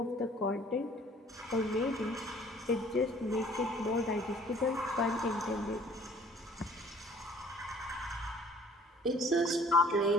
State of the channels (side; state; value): both; normal; correlation 0.55